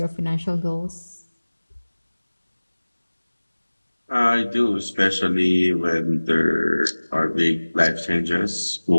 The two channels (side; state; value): both; inverted; correlation -1.00